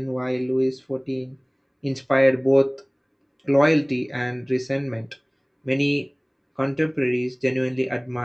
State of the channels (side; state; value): both; identical; correlation 1.00